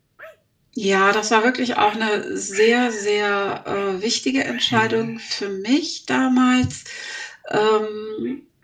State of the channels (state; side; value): identical; both; correlation 1.00